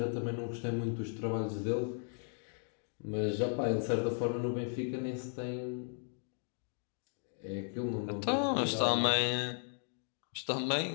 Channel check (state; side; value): silent; right; 54 dB below the other